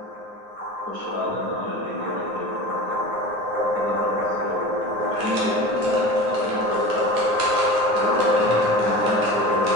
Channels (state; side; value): late; left; 9.5 ms